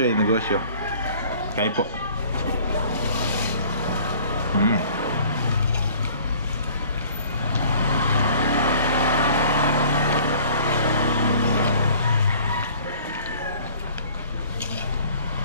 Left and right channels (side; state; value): both; inverted; correlation -0.51